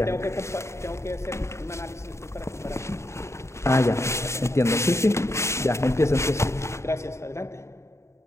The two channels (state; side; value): late; right; 0.14 ms